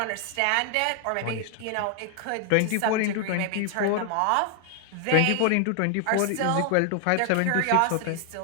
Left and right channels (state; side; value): different; both; correlation 0.00